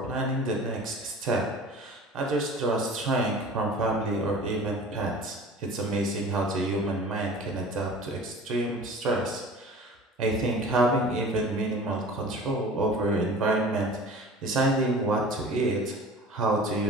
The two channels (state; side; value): normal; both; correlation 0.42